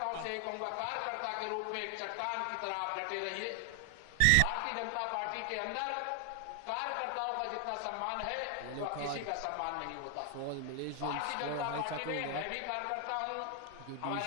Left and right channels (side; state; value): both; different; correlation 0.00